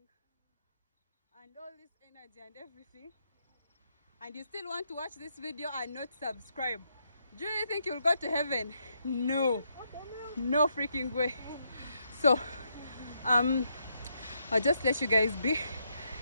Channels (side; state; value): both; inverted; correlation -0.78